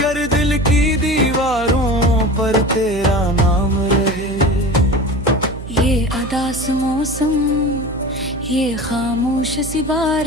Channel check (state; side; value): noise; right; hum, 11 dB below the sound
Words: दिल की दीवारों पर तेरा नाम रहे। ये अदास मौसम, ये खामोश सी